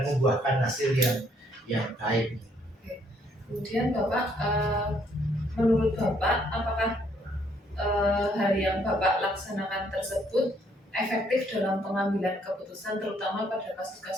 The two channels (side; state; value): both; normal; correlation 0.68